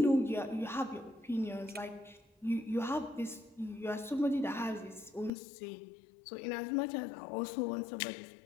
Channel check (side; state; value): right; drops out; at 5.3 s